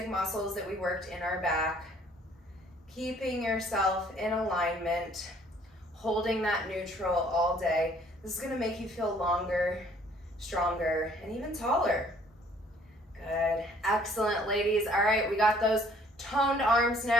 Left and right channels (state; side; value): normal; both; correlation 0.59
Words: muscles that we worked in our back. Keeping yourself in alignment. Holding that neutral all day. This is going to make you feel longer, stronger, and even taller. Good. Excellent, ladies. All right, we got those toned arms